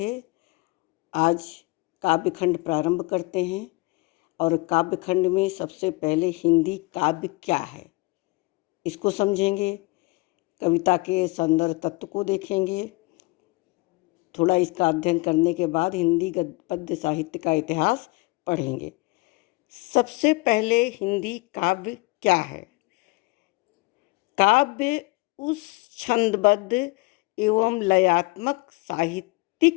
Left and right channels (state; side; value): quieter; right; 25.2 dB